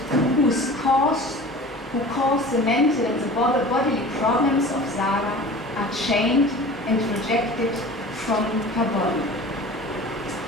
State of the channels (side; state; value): both; normal; correlation 0.40